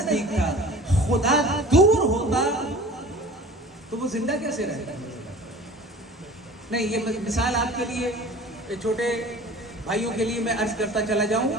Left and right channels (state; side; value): normal; both; correlation 0.43